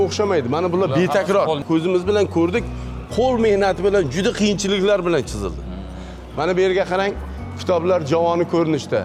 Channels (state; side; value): identical; both; correlation 1.00